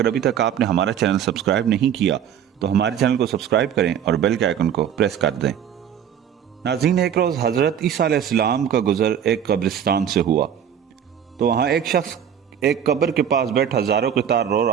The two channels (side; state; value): left; quieter; 8.9 dB